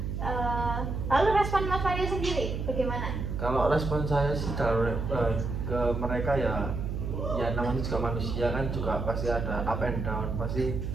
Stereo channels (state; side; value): noise; right; hum, 3 dB below the sound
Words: Lalu respon Mas Mario sendiri bagaimana? Kalau respon saya sih ke mereka ya namanya juga manusia kan, juga pasti ada up and down. Pasti